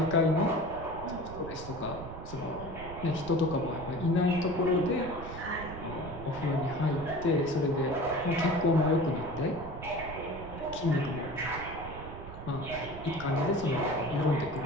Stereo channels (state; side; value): noise; right; rumble, 11 dB below the sound